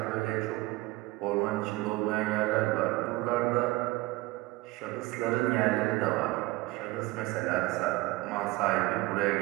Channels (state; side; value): quieter; left; 20.5 dB